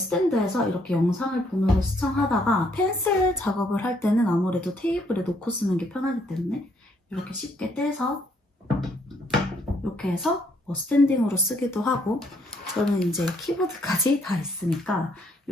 이렇게 영상을 보면서 시청하다가 펜슬 작업을 할 때는 아무래도 테이블에 놓고 쓰는 게 편하기 때문에 이렇게 쉽게 떼서 이렇게 해서 스탠딩으로 쓰기도 하고, 저는 이제 키보드까지 다 있으니까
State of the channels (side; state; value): both; normal; correlation 0.69